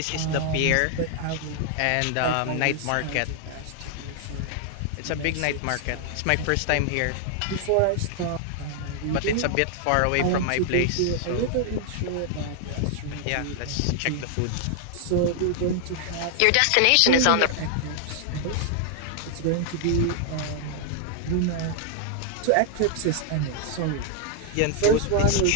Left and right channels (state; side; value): different; both; correlation 0.00